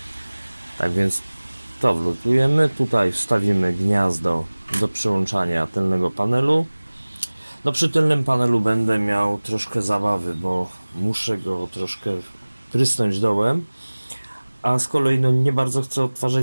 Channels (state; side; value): inverted; both; correlation -1.00